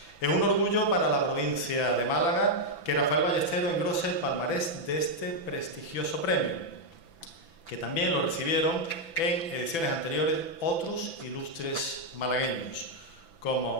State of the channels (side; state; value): right; late; 6.0 ms